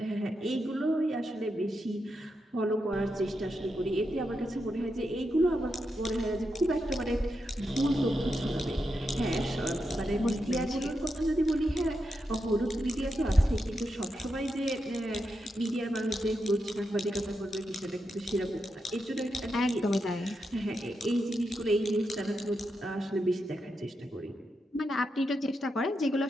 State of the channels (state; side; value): normal; both; correlation 0.86